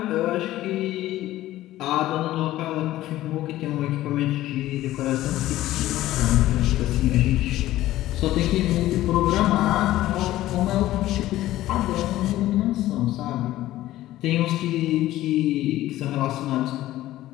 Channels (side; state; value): right; quieter; 15.1 dB